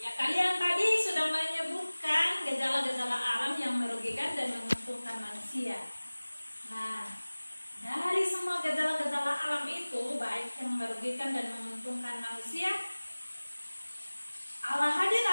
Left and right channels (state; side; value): inverted; both; correlation -1.00